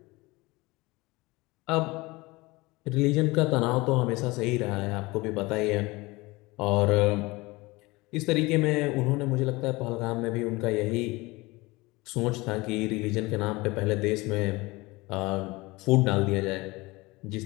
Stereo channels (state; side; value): quieter; right; 22.5 dB